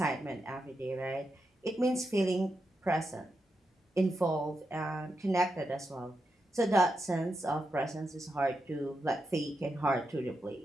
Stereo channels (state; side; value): normal; both; correlation 0.86